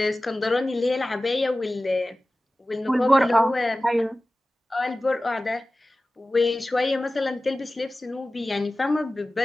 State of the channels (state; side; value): normal; both; correlation 0.96